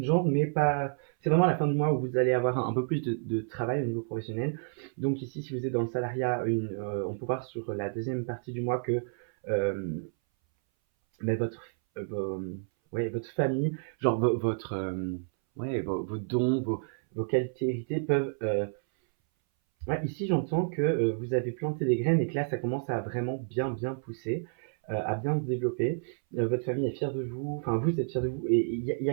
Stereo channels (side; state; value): left; silent; 58 dB below the other